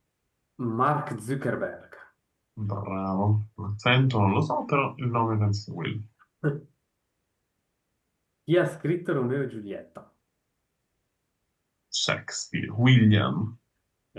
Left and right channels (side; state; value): both; identical; correlation 1.00